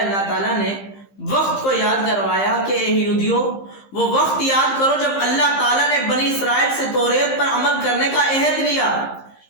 تعالیٰ نے، وقت کو یاد کروایا کہ اے یہودیوں وہ وقت یاد کرو جب اللہ تعالیٰ نے بنی اسرائیل سے توریت پر عمل کرنے کا عہد لیا،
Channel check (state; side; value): late; right; 15 ms